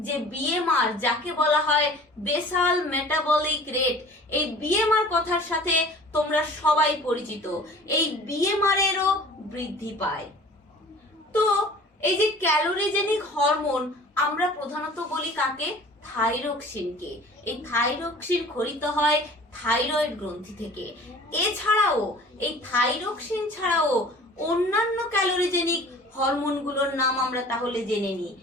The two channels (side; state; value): both; normal; correlation 0.46